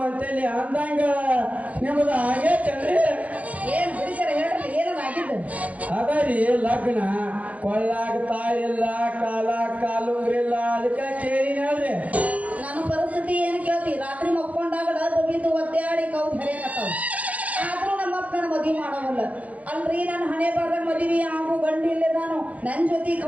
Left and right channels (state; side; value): late; left; 0.068 ms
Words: ಅಂದಂಗ ನಿಮ್ಮದ ಆಗೇತನ್ರಿ ಏನ್ ಬಿಡಿಸರ ಹೇಳ್ರಿ ಏನೋ ಆಗಿದ್ದು ಅದರಿ ಲಗ್ನ ಕೊಳ್ಳಾಗ ತಾಯಿಲ್ಲ ಕಾಲುಂಗ್ರಿಲ್ಲ ಅದಕ್ಕೆ ಕೇಳಿ ನೋಡ್ರಿ ನನ್ನ ಪರಿಸ್ಥಿತಿ ಏನು ಕೇಳ್ತಿ ರಾತ್ರಿ ಮಕ್ಕೊಂಡಾಗಡ ಬಬಿದ್ದು ಒದ್ದಾಡಿ ಕೌದ್ ಹರಿಯಕತ್ತಾವ ಆದ್ರೂ ನಮ್ಮಪ್ಪ ನನ್ನ ಮದುವೆ ಮಾಡೋವಲ್ಲ ಅಲ್ರಿ ನಾನು ಹಣೆ ಬಾರ್ದಾಗ ಮದುವೆ ಆಗು ಗಂಡು ಇಲ್ಲೇ ನಾನು ನನ್ನ ಜೊತೆ